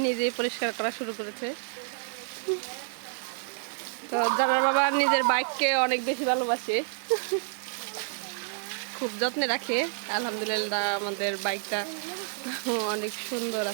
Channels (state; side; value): silent; left; digital silence